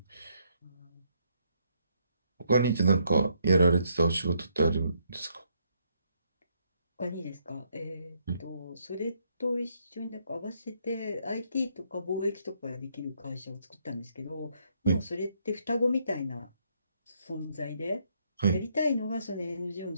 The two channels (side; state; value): both; inverted; correlation -0.73